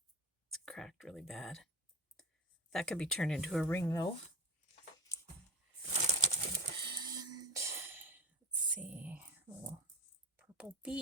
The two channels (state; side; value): normal; both; correlation 0.28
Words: it's cracked really bad. That could be turned into a ring though. And let's see, a little purple